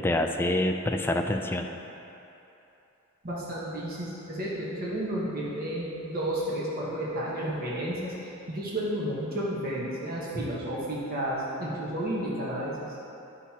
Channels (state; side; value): normal; both; correlation 0.44